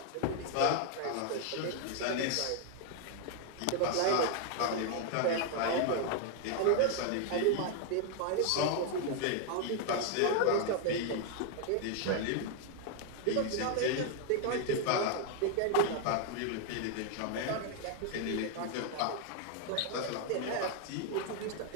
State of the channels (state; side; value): different; both; correlation 0.00